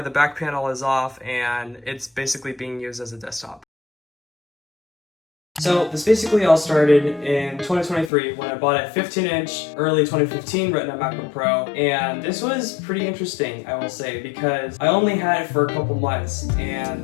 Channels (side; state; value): right; drops out; at 8.1 s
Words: the back panel is off and it's basically being used as a desktop. So this basically all started in 2023 when I bought a 15-inch early 2015 Retina MacBook Pro, and this was pretty interesting, I will say, because I only had it for a couple months, and